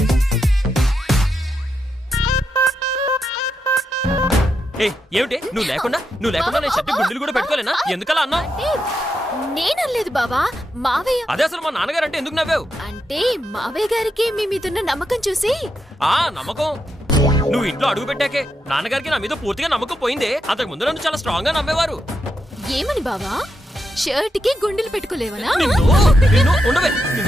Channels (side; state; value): both; normal; correlation 0.84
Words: ఏమిటి నువ్వు లేకుండా నేను షర్టు గుండీలు కూడా పెట్టుకోలేనా? ఎందుకలా అన్నా? నేనలేదు బావా, మావయ్య. అదే అసలు మా నాన్నగారు అంటే ఎందుకు నవ్వావు? అంటే మావయ్య గారికి మీ మీదున్న నమ్మకం చూసి. నమ్మకం? నువ్వు ఇంట్లో అడుగు పెట్టాకే నాన్నగారికి నా మీద పూర్తిగా నమ్మకం పోయిందే. అంతకు ముందు నన్ను చాలా స్ట్రాంగ్ గా నమ్మేవారు. ఏమని బావా? షర్ట్ కి గుండెలు పెట్టుకోలేవనా? ఉండవే.